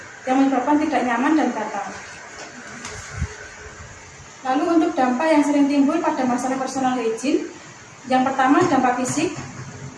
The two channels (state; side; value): identical; both; correlation 1.00